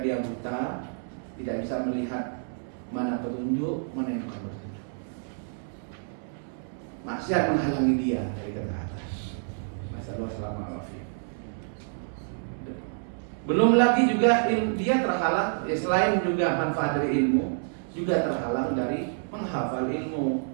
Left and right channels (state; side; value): silent; left; 59 dB below the other